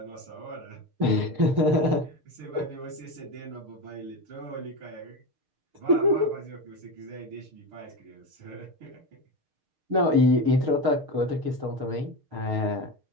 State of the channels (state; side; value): late; left; 6.6 ms